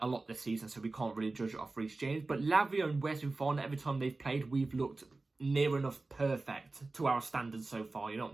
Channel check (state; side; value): quieter; left; 3.4 dB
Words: lot this season, so we can't really judge it off Reece James. But Lavia and Wesley Fofana, every time they've played, we've looked near enough perfect to our standards so far. You know what